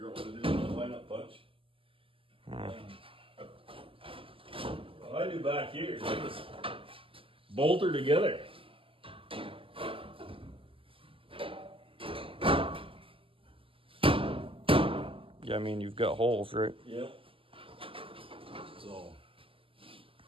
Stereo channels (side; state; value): left; late; 0.26 ms